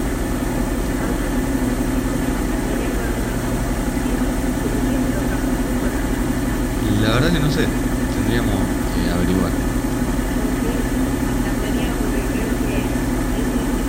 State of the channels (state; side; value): identical; both; correlation 1.00